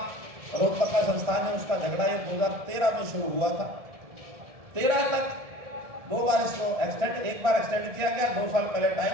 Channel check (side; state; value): left; late; 1.7 ms